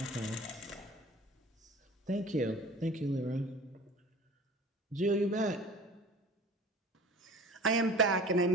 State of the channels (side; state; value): both; normal; correlation 0.42